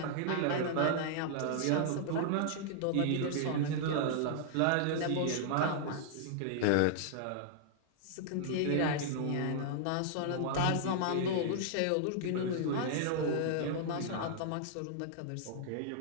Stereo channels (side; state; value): both; different; correlation -0.01